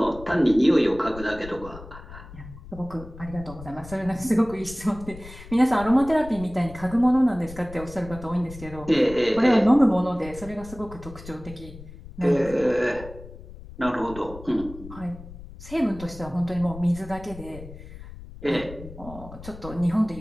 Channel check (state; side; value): noise; left; rumble, 15 dB below the sound